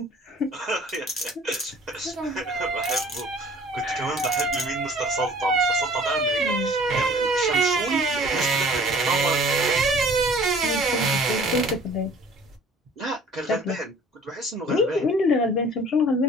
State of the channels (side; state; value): both; normal; correlation 0.51